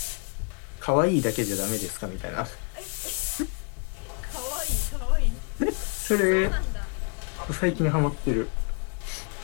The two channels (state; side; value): quieter; right; 38.5 dB